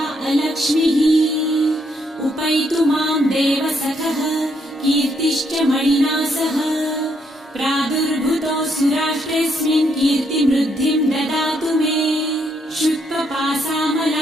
अलक्ष्मीः उपैतु मां देवसखः कीर्तिश्च मणिना सह प्रादुर्भूतोऽसुराष्ट्रेऽस्मिन् कीर्तिमृद्धिं ददातु मे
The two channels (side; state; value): both; normal; correlation 0.74